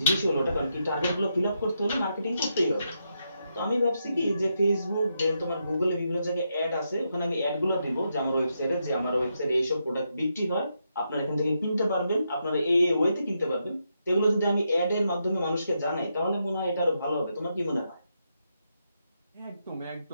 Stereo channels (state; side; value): inverted; both; correlation -0.82